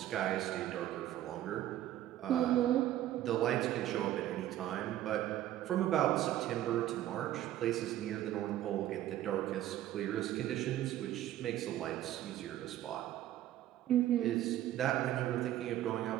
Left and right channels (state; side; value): quieter; left; 13.1 dB